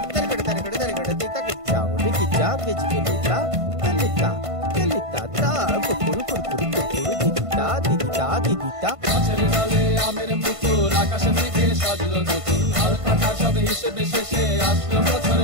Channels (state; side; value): late; left; 1.5 ms